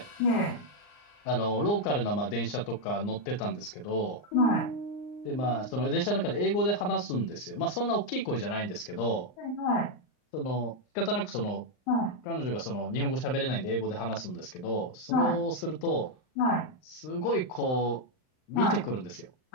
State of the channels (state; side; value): late; right; 39 ms